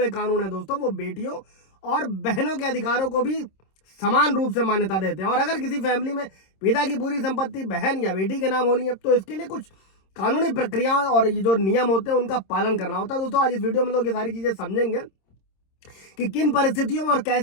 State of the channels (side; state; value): right; late; 26 ms